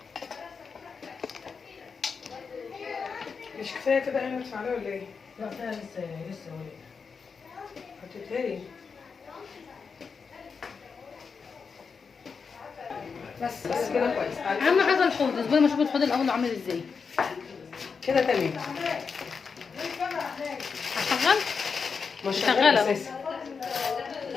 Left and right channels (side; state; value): right; quieter; 5.5 dB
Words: مش كفايه كده يعني ندفع عليها ولا ايه؟ لا فيها لسه وليه. هتتهري. بس كده كويس. اهم حاجه الحوض، اصبري ما اشوف الحوض الاول عامل ازاي. كده تمام. هشغل. مش شغالة. شغاله اساسا.